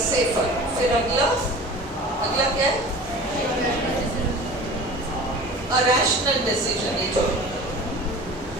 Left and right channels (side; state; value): both; normal; correlation 0.39